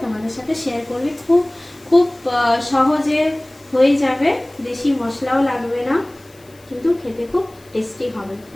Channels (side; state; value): left; noise; hiss, 28 dB below the sound